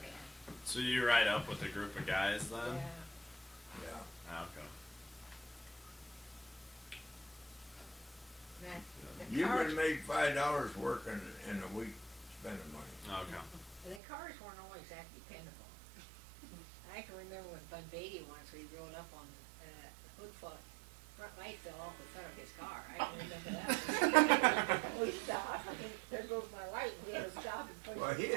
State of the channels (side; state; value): left; drops out; at 14.0 s